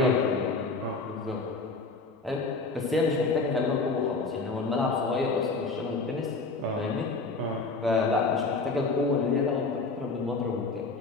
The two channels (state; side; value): quieter; right; 3.8 dB